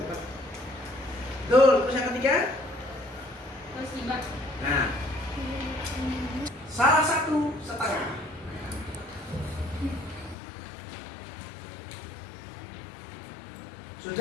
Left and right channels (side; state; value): right; drops out; at 10.4 s